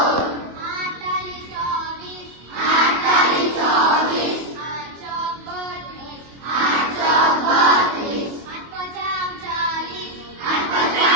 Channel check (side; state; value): left; late; 25 ms